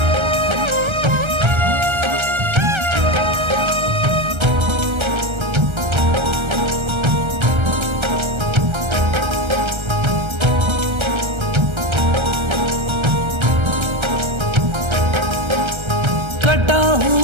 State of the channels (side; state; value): left; late; 1.3 ms